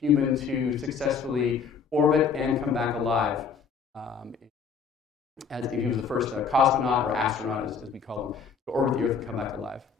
to successfully orbit and come back alive. As he was the first cosmonaut or astronaut, as we call them, to orbit the Earth and come back alive.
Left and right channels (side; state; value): right; quieter; 5.9 dB